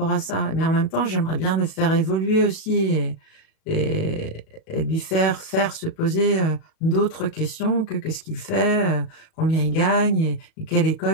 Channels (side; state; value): right; late; 37 ms